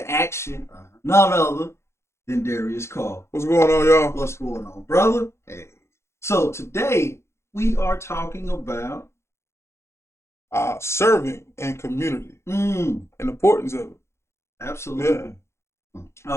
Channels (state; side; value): late; right; 0.13 ms